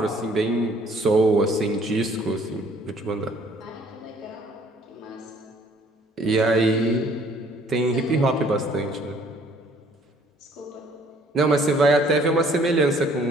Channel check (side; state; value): both; normal; correlation 0.59